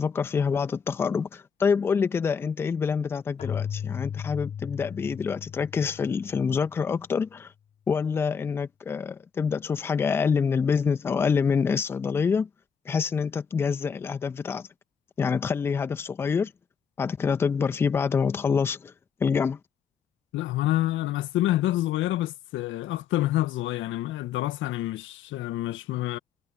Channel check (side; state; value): right; quieter; 6.6 dB